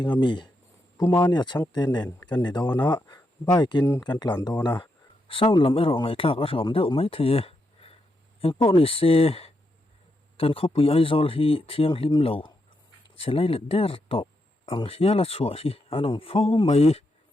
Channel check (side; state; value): both; normal; correlation 0.82